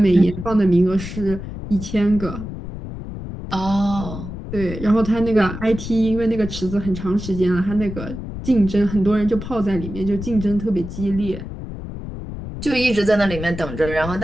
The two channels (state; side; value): noise; left; rumble, 9 dB below the sound